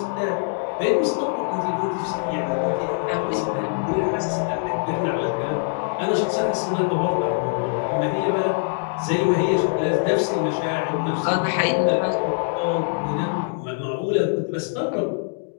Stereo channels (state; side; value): silent; right; digital silence